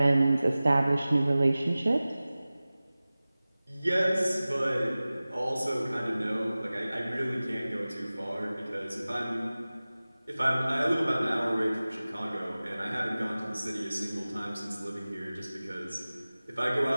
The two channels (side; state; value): both; inverted; correlation -0.98